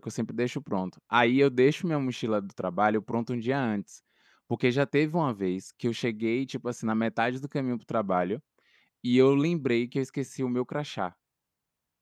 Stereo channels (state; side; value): identical; both; correlation 1.00